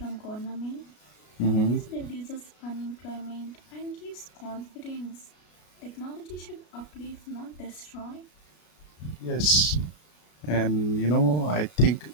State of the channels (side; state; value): right; late; 33 ms